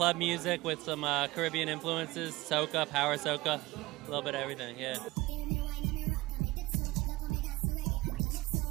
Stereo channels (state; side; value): quieter; left; 19.4 dB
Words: music with some Caribbean influences, soca, power soca, a little bit of everything, yeah. Give me wine and me rock and me dipso. Look how me dance to reggae and